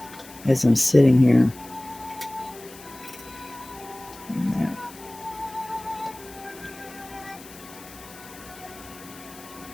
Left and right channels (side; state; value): left; noise; hiss, 19 dB below the sound